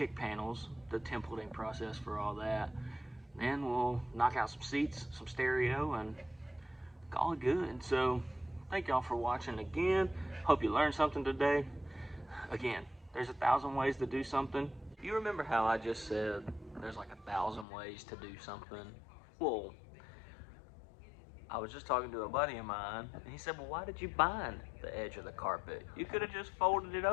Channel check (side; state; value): right; drops out; at 17.7 s